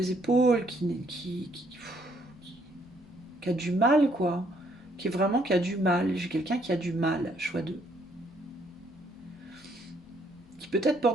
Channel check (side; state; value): both; normal; correlation 0.68